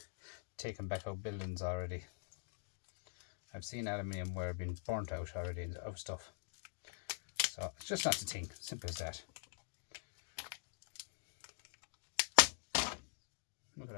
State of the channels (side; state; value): right; silent; digital silence